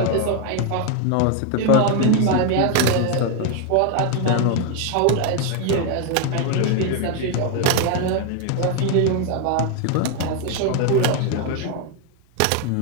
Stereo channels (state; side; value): different; both; correlation 0.01